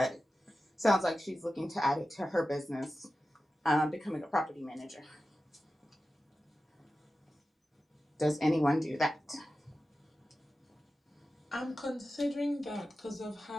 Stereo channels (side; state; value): both; normal; correlation 0.94